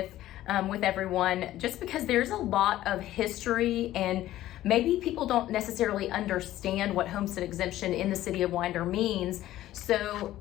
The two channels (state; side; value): quieter; right; 14.3 dB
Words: everyone, just because there's a lot of history and maybe people don't necessarily understand what homestead exemption in the city of Winder means. So